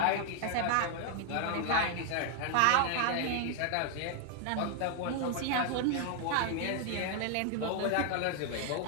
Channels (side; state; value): both; different; correlation 0.00